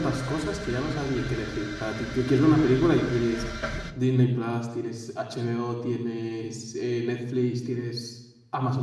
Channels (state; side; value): identical; both; correlation 1.00